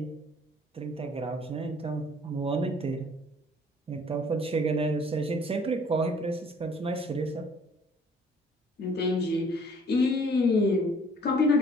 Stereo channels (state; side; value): normal; both; correlation 0.56